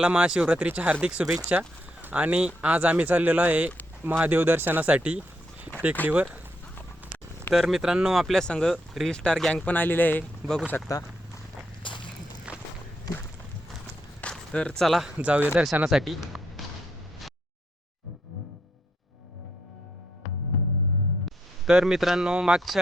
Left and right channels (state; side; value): normal; both; correlation 0.78